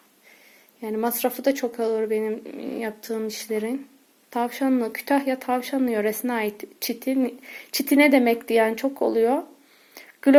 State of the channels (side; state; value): both; identical; correlation 1.00